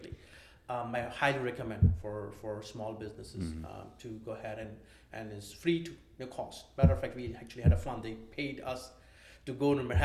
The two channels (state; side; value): identical; both; correlation 1.00